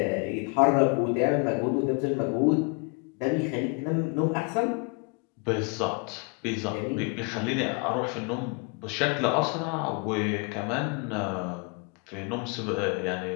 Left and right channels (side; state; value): right; quieter; 34.0 dB